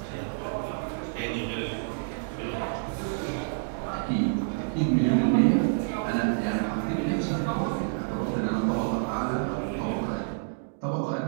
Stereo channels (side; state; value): left; silent; digital silence